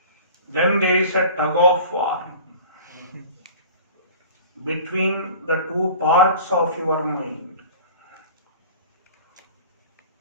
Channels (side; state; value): both; inverted; correlation -0.41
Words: Then there is a tug of war between the two parts of your mind.